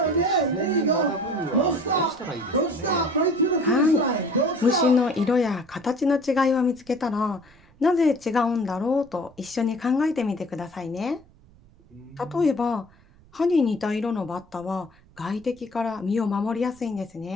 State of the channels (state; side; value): noise; right; rumble, 27 dB below the sound